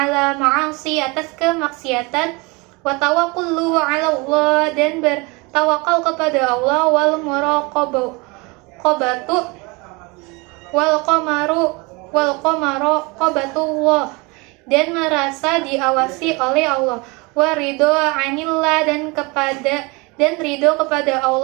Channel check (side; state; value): left; quieter; 26.5 dB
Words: ma'asi, atas kemaksiatan, wa tawakkulu ala Allah, dan bertawakal kepada Allah, wal muraqabatu wal qabatullah, dan merasa diawasi oleh Allah, wa ridho anillah, dan ridho kepada